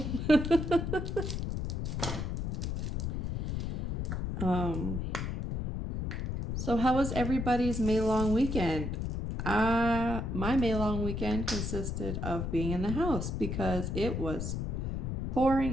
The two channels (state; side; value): noise; left; rumble, 2 dB below the sound